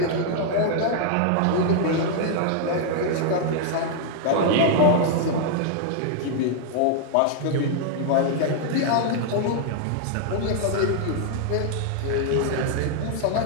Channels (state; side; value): different; both; correlation 0.00